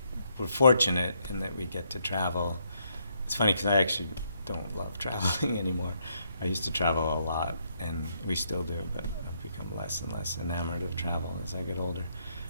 fortunate in that we get to travel. It's funny because I actually don't love traveling anymore. I used to travel a lot, and we still do, but I've become less and less enamored of travel as I get older.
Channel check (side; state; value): both; inverted; correlation -0.74